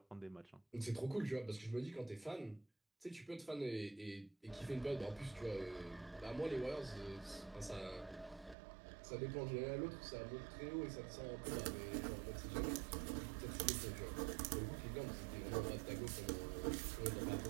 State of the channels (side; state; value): left; drops out; at 8.6 s